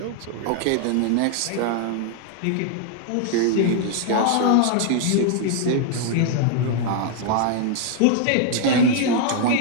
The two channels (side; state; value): both; different; correlation -0.01